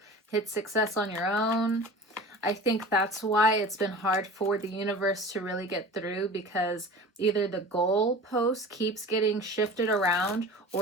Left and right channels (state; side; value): normal; both; correlation 0.38